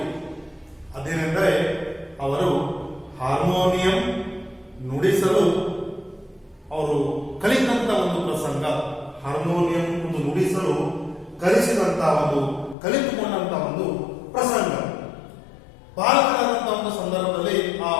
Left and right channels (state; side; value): drops out; right; at 12.8 s